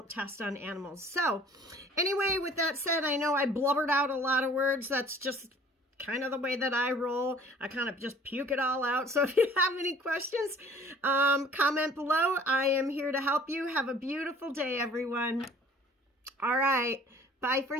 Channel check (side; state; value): both; normal; correlation 0.51